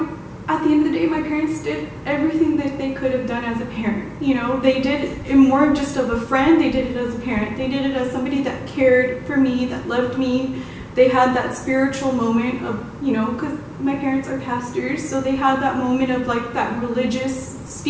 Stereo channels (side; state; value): both; identical; correlation 1.00